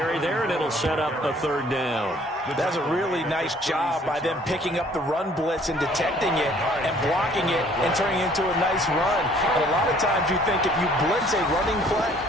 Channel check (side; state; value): both; normal; correlation 0.57